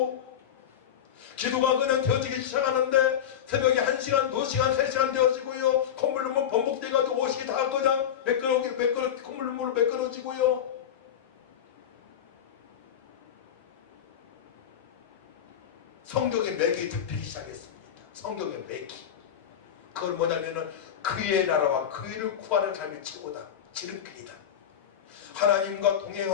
기도가 그냥 되어지기 시작하는데 새벽에 1시간, 2시간, 3시간 되어지고요. 콧물 눈물 번복돼가지고 옷이 다 그냥 콧물 눈물로 매끄러지고요. 성경의 맥이 잡히기 시작했습니다. 성경의 맥이. 그건 뭐냐면은 그의 나라와 그 일을 구하는 삶이 최고다. 지름길이다. 하나님과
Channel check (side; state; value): right; quieter; 9.3 dB